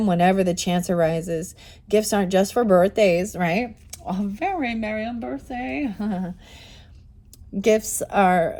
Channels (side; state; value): both; identical; correlation 1.00